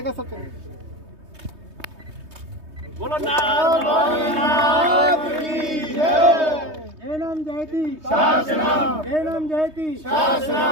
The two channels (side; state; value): left; late; 3.2 ms